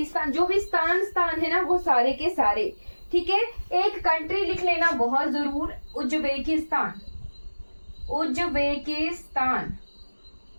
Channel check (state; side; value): inverted; both; correlation -1.00